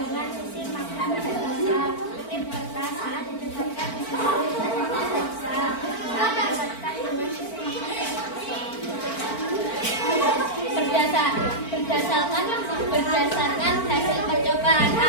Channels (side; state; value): right; late; 4.4 ms